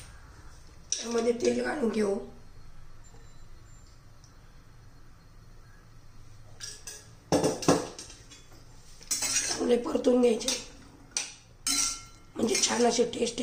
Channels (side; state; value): both; identical; correlation 1.00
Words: त्यामध्ये तेल घालून घेऊ. चांगले परतून घ्यायचे, म्हणजे छान अशी टेस्ट